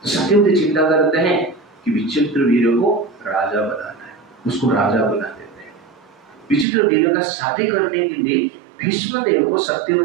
तो सत्यवती चिंता करते हैं कि विचित्रवीर्य को राजा बनाना है, उसको राजा बना देते हैं। विचित्रवीर्य का शादी करने के लिए भीष्मदेव को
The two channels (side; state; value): left; drops out; at 6.7 s